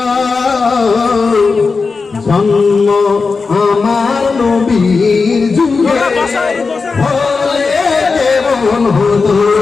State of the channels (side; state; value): right; quieter; 4.5 dB